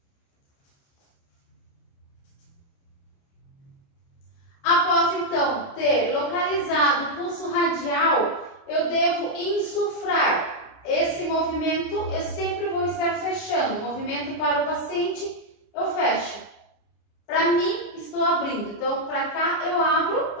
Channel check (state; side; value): late; right; 29 ms